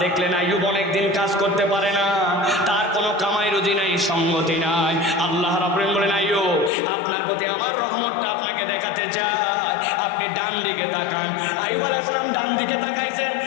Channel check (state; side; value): drops out; right; at 6.7 s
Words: দেখলেন আইয়ুব অনেকদিন কাজ করতে পারে না, তার কোনো কামাই রুজি নাই, সঙ্গতি নাই। আল্লাহ রাব্বুল আলামিন বলেন, আইয়ুব, আপনার প্রতি আমার রহমতটা আপনাকে দেখাতে চাই, আপনি ডান দিকে তাকান। আইয়ুব আলাইহিস সালাম ডান দিকে তাকাইছেন,